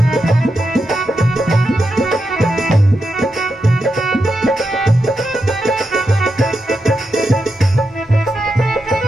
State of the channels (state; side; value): normal; both; correlation 0.86